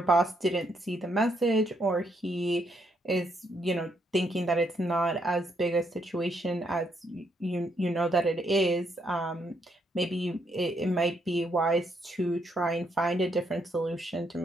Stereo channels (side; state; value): both; normal; correlation 0.74